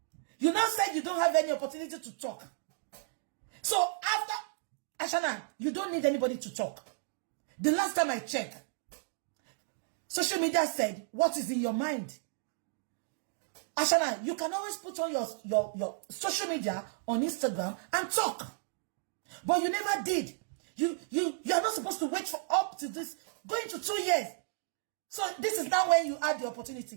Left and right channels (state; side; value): silent; left; digital silence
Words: You now said you don't have any opportunity to talk. So after Ashana, you don't need anybody to talk. The last time I checked, social media said, what is in your mind? Ashana, you can always put on your social media on Instagram and talk. But you never did. You are not supposed to wait for up to this, going to 2 years. So this is now when you had the